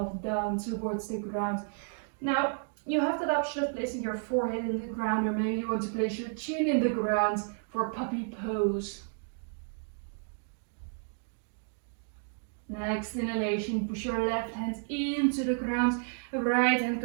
down towards the ground. Now, you have that option of placing your forehead in the ground, or maybe you want to place your chin in the ground for puppy pose. Next inhalation, push your left hand into the ground. Right hand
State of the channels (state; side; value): silent; left; 57 dB below the other